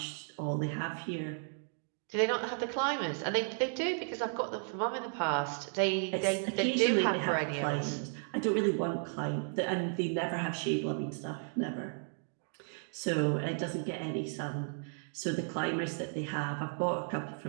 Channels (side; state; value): left; silent; 55 dB below the other